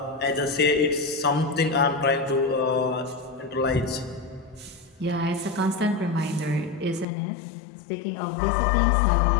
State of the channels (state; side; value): drops out; right; at 7.1 s